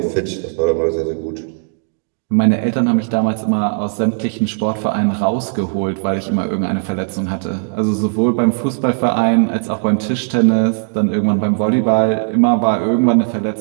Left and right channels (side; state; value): left; silent; 68 dB below the other